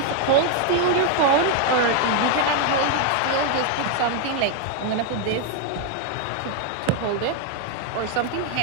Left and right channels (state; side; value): different; both; correlation 0.00